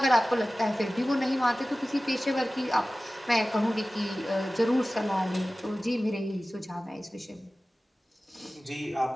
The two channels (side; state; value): both; normal; correlation 0.97